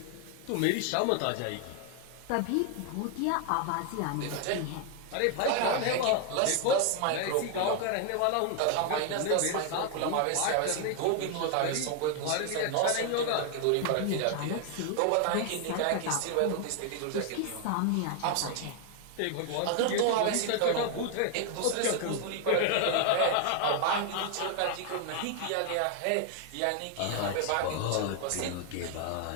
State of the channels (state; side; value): different; both; correlation 0.00